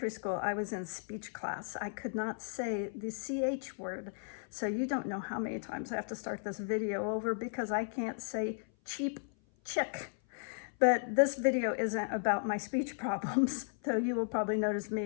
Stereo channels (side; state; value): right; silent; 54 dB below the other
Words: school, I was in speech class. I could not say the CH word. So you don't know how many times I have to start this video over because I can't say cheap chick. But this video isn't about my speech problems, though you will probably notice